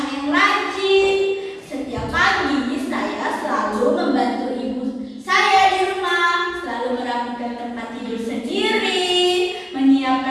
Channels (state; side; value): identical; both; correlation 1.00